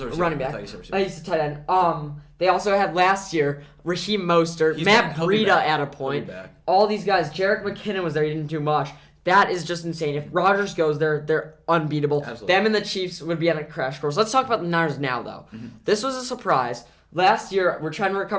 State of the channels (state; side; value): identical; both; correlation 1.00